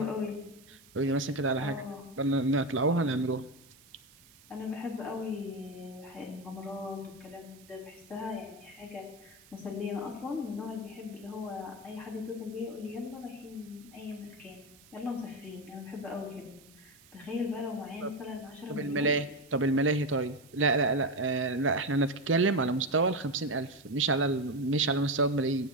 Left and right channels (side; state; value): right; noise; hiss, 25 dB below the sound